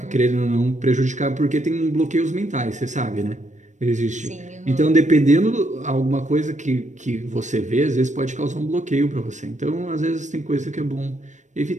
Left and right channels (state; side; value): late; left; 0.35 ms